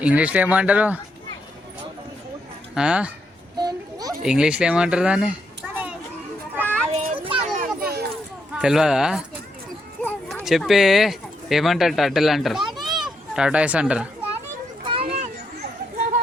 ఇంగ్లీష్లో ఏమంటారు? ఇంగ్లీష్లో ఏమంటారు దాన్ని? తెలియదా? చెప్పే. ఏమంటారు? టర్టిల్ అంటారు, టాటాయిస్ అంటారు.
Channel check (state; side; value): normal; both; correlation 0.79